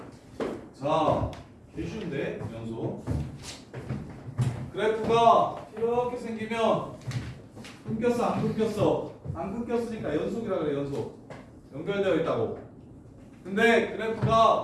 자, 개 쉬운데 연속. 그래프가 이렇게 생기면 끊겼어 안 끊겼어? 안 끊겼으니까 연속이라 그래. 연속 연결되어 있다고. 근데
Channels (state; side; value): identical; both; correlation 1.00